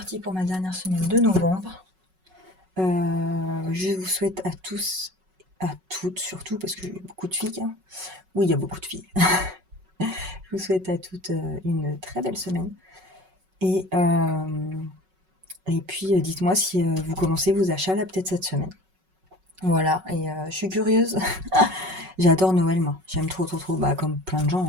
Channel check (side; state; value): left; late; 5.4 ms